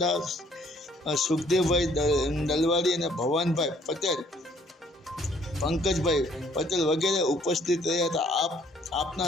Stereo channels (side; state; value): both; normal; correlation 0.62